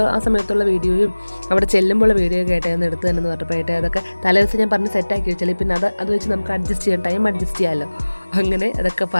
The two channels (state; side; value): inverted; both; correlation -1.00